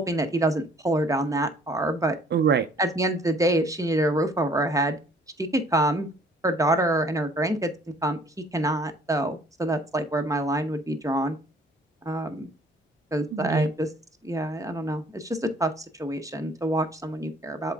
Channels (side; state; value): both; normal; correlation 0.57